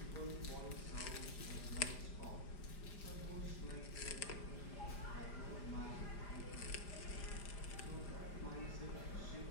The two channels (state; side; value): late; right; 5.0 ms